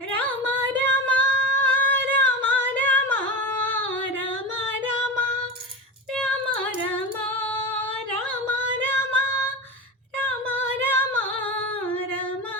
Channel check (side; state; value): both; normal; correlation 0.24